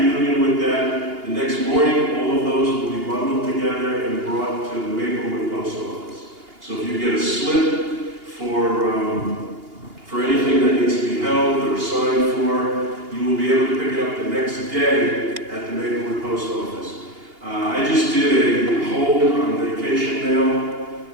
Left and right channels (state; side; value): late; left; 2.8 ms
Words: Union with that. The next morning, all of those will be bundled together and brought to the Maplewood post office. So if you get a slip for anything that needs to be held or signed for, you will be able to pick it up the next day at the Maplewood post office. I just did a hold on vacation mail,